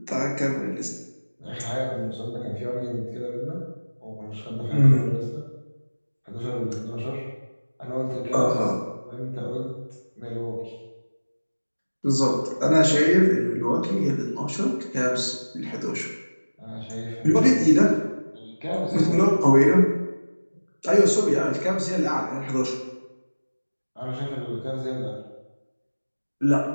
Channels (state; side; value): inverted; both; correlation -1.00